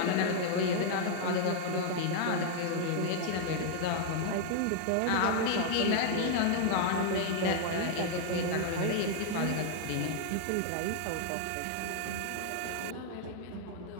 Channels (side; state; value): both; different; correlation 0.00